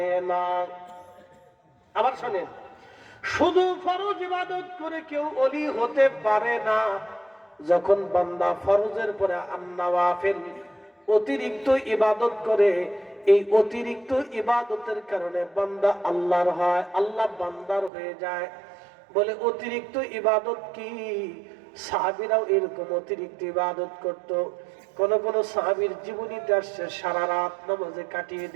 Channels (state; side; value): drops out; left; at 17.9 s